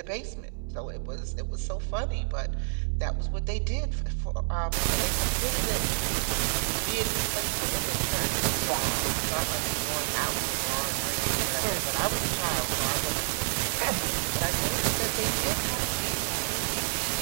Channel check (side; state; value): left; silent; 59 dB below the other